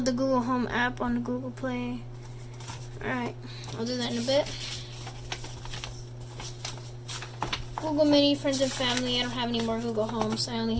the Google Home app on the Google Play. Alright, I'll do that in a bit. Google Mini, friends and family. I don't have any more Google Homes. I only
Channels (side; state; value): both; identical; correlation 1.00